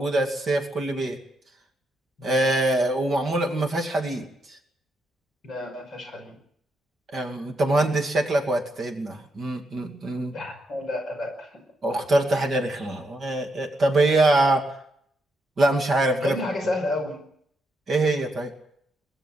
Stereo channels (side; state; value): both; normal; correlation 0.80